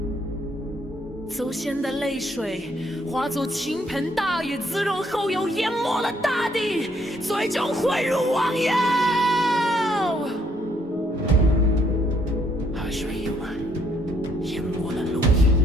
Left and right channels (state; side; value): normal; both; correlation 0.69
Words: 祖先的泪水化作倾盆大雨，滋润后又淹没了大地，最终汇入汪洋。海水溢满，淹没了陆地。